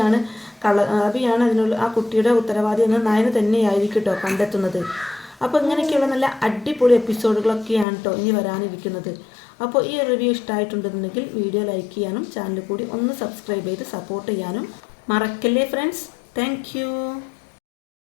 അതിനുള്ള ആ കുട്ടിയുടെ ഉത്തരവാദി എന്ന് നയന തന്നെയായിരിക്കും കേട്ടോ കണ്ടെത്തുന്നത്. അപ്പോൾ ഇങ്ങനെയൊക്കെയുള്ള നല്ല അടിപൊളി എപ്പിസോഡുകളൊക്കെയാണ് കേട്ടോ ഇനി വരാനിരിക്കുന്നത്. അപ്പോൾ ഈ റിവ്യൂ ഇഷ്ടമായിട്ടുണ്ടെന്നുണ്ടെങ്കിൽ വീഡിയോ ലൈക്ക് ചെയ്യാനും ചാനൽ കൂടി ഒന്ന് സബ്സ്ക്രൈബ് ചെയ്ത് സപ്പോർട്ട് ചെയ്യാനും മറക്കല്ലേ ഫ്രണ്ട്സ്. താങ്ക്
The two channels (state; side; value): drops out; right; at 7.9 s